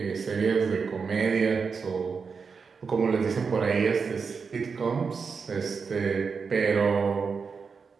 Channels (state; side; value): quieter; left; 5.4 dB